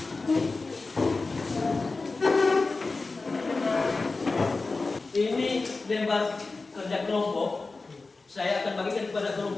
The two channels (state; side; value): quieter; right; 3.7 dB